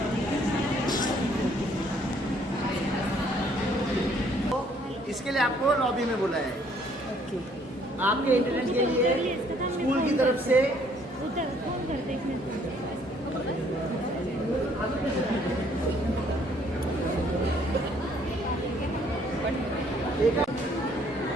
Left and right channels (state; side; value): normal; both; correlation 0.63